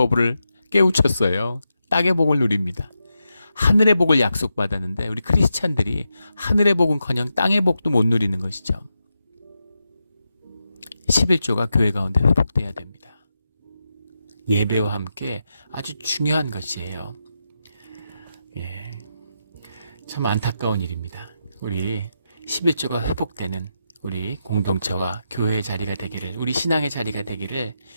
깨우쳤어요. 땅의 복을 누립니다. 하늘의 복을 약속받았는데 우리 크리스찬들이 하늘의 복은커녕 땅의 복도 못 누리는 것이죠. 11조가 교회 가운데 회복돼야 됩니다. 예배와 함께 아주 중요한 것이에요. 참 안타까운 일입니다. 우리 11조가 회복되는 우리 공동체와 교회의 자리가 되기를, 우리 신앙의 자리가 되기를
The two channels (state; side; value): inverted; both; correlation -0.87